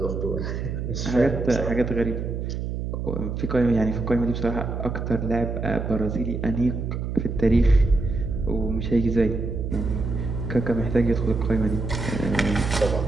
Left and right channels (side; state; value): right; noise; hum, 4 dB below the sound